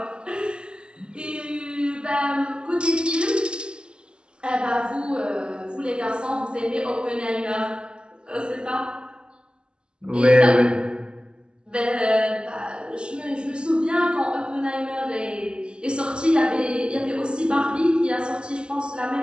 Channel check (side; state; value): left; late; 0.050 ms